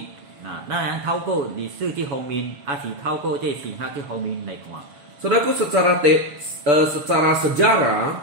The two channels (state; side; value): late; left; 6.8 ms